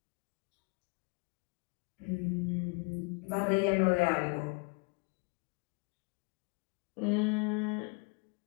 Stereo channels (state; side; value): quieter; right; 31.9 dB